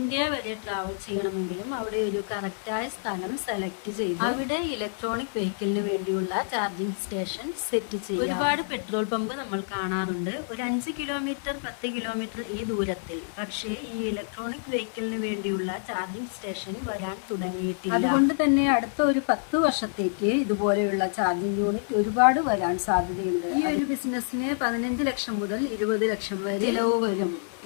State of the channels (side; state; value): right; silent; 60 dB below the other